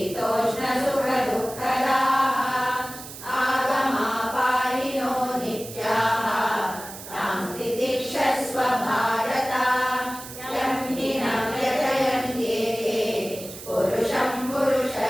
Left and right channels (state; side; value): noise; right; hiss, 13 dB below the sound